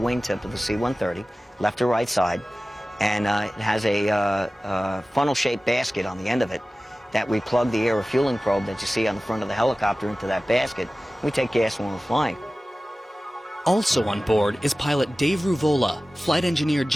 of the C-130, left or right side, and it has a funnel-shaped basket on the end of it that we plug the air refueling probe that you see on the front of the helicopter into that basket. We take gas when we're flying. Also on board is pilot Dave Ruvola, flight engineer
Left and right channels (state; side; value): normal; both; correlation 0.96